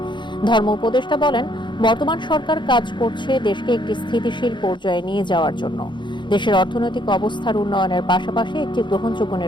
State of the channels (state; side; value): late; right; 0.23 ms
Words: ধর্ম উপদেষ্টা বলেন, বর্তমান সরকার কাজ করছে দেশকে একটি স্থিতিশীল পর্যায়ে নিয়ে যাওয়ার জন্য, দেশের অর্থনৈতিক অবস্থার উন্নয়নের পাশাপাশি একটি গ্রহণযোগ্য